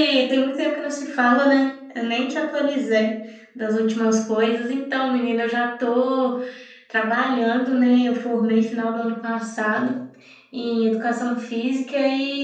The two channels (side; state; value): both; identical; correlation 1.00